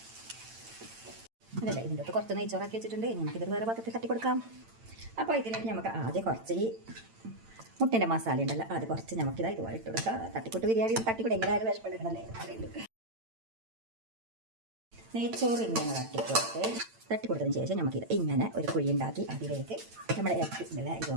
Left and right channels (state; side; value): late; left; 8.9 ms